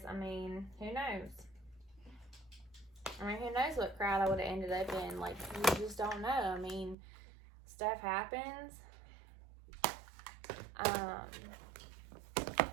who knows? Who knows what crowd I would have ended up in. You just don't know. Stuff happens.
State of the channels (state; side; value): drops out; left; at 7.0 s